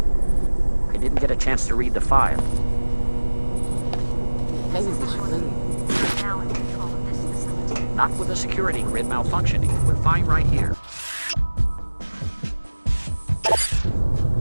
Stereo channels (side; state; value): both; inverted; correlation -1.00